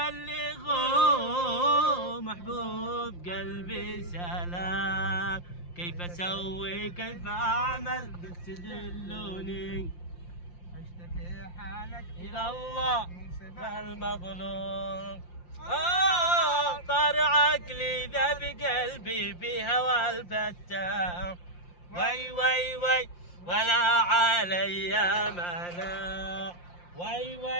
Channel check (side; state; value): right; late; 5.7 ms